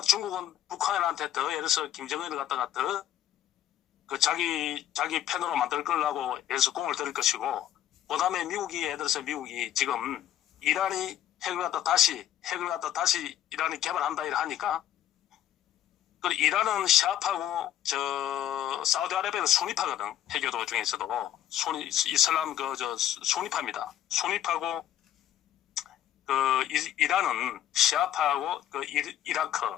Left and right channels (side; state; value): right; quieter; 11.7 dB